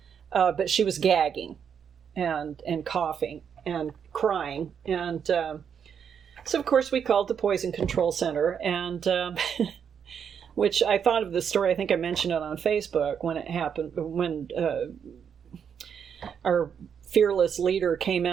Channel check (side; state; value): left; quieter; 7.6 dB